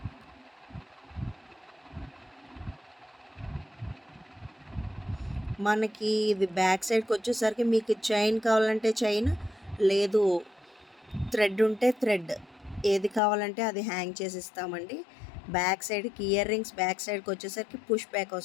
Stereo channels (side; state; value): right; drops out; at 13.2 s